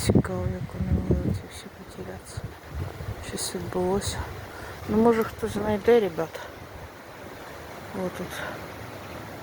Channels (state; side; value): identical; both; correlation 1.00